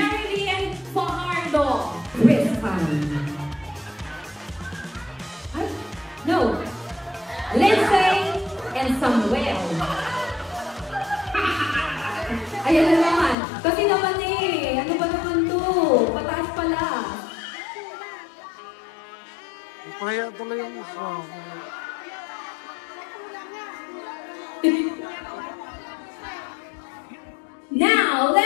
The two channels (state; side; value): drops out; right; at 13.4 s